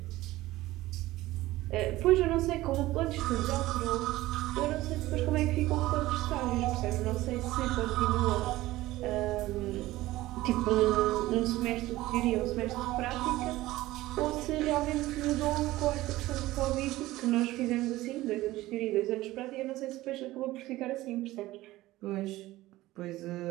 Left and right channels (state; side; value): quieter; left; 17.2 dB